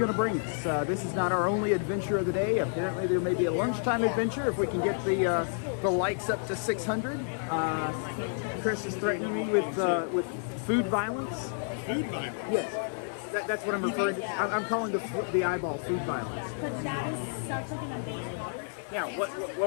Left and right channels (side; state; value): right; silent; 58 dB below the other